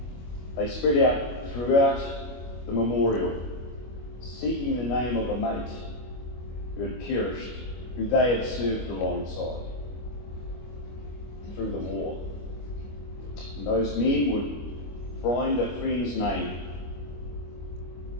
They spread out throughout the memorial, seeking the name of a mate who had perished, who they had served alongside through the war. And those men would find a friend's name,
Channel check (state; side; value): late; right; 25 ms